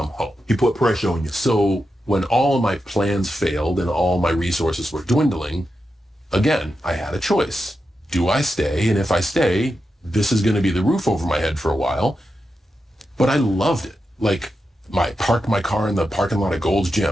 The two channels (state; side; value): normal; both; correlation 0.88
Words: home. He put pressure on you. So when all of my plans failed and all my resources were dwindling, again, I had a choice. Do I stay? And if I stay, this is going to be the roof over my head for a while. But I loved it. Like, parked my car in the parking lot of Gold's